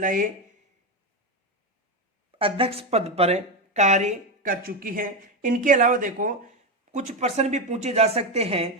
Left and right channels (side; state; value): both; normal; correlation 0.12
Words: अध्यक्ष पद पर कार्य कर चुकी हैं। इनके अलावा देखो कुछ प्रश्न भी पूछे जा सकते हैं